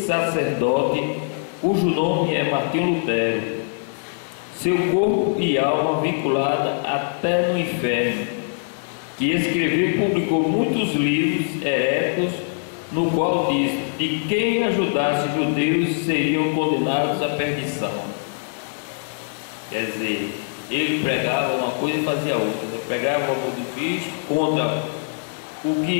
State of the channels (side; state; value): right; silent; 64 dB below the other